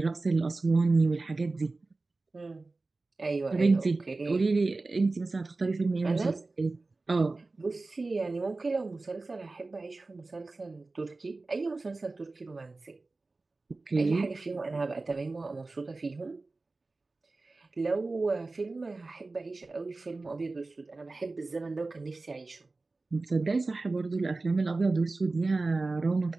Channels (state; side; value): quieter; left; 3.4 dB